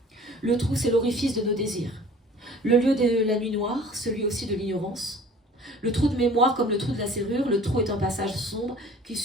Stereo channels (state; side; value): normal; both; correlation 0.47